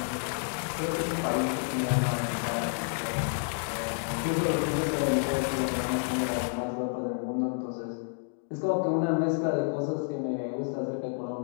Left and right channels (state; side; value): silent; right; 57 dB below the other